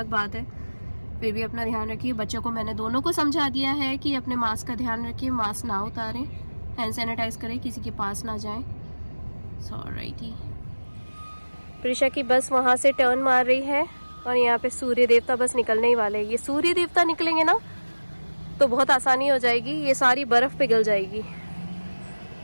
बात है, फिर भी अपना ध्यान रखिए। बच्चों को मैंने दोनों को समझा दिया है कि अपने मास्क का ध्यान रखिए, मास्क ना उतारें, हैंड सैनिटाइज करें, किसी के पास ना जाएं। ऑलराइटी, प्रिशा की बस वहाँ से टर्न मार रही है और यहाँ पे सूर्य देवता बस निकलने ही वाले हैं। ये सूर्य देवता निकलेंगे ना तो बहुत आसानी हो जाएगी, ये सारी बर्फ पिघल जाएगी।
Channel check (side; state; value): both; inverted; correlation -1.00